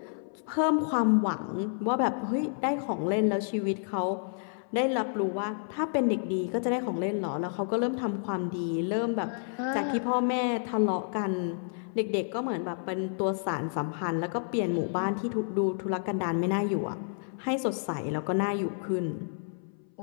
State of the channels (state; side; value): silent; right; 58 dB below the other